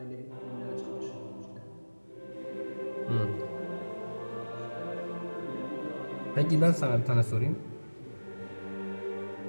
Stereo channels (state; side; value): inverted; both; correlation -1.00